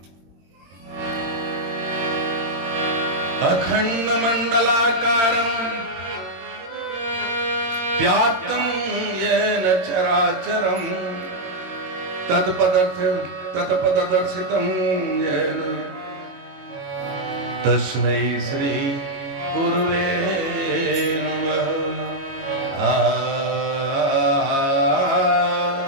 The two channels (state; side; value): late; left; 22 ms